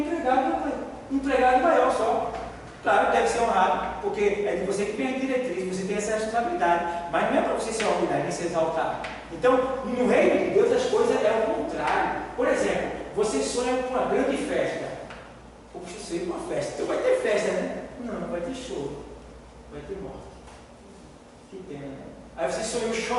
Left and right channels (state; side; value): identical; both; correlation 1.00